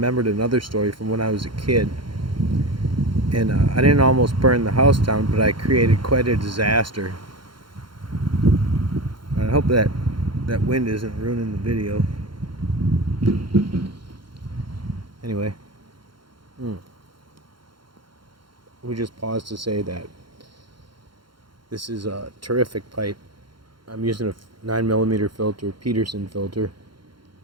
another story from when I was a kid, and I didn't almost burn the house down, but I created quite a disaster. I hope that wind isn't ruining the video. Anyway, we just pause to say that this is a terrific pipe. I'm using a 9mm filter, Peterson filter.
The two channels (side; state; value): left; late; 0.72 ms